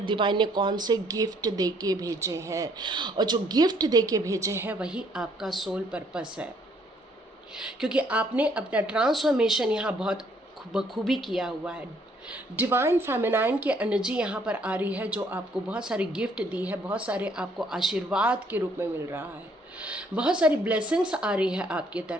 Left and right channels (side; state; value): both; normal; correlation 0.65